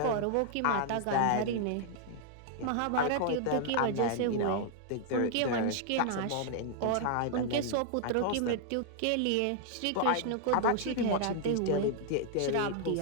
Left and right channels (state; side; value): different; both; correlation 0.00